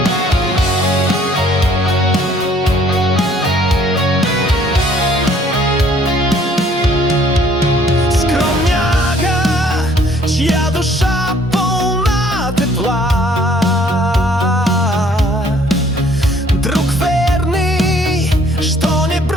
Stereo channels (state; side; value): normal; both; correlation 0.60